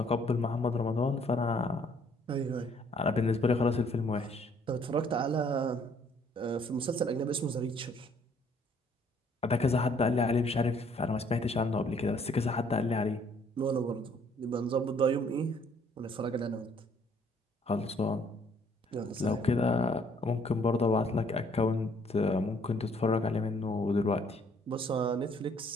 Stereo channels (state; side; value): normal; both; correlation 0.62